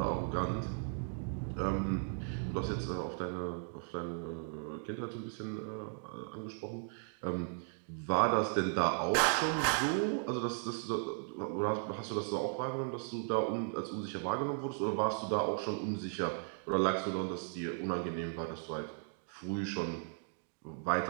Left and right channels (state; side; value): silent; left; 53 dB below the other